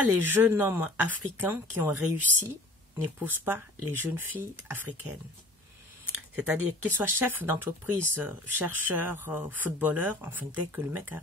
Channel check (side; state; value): both; normal; correlation 0.47